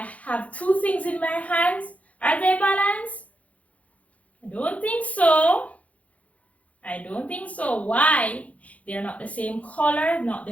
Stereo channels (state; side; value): late; right; 0.067 ms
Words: have two things in my hands. Are they balanced? I don't think so. I don't think so. Why? They're not the same color, not